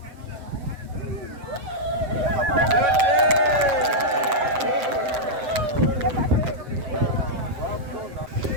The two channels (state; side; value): late; left; 7.7 ms